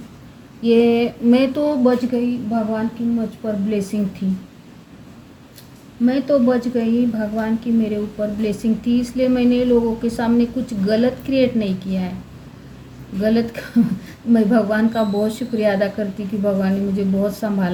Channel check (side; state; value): both; identical; correlation 1.00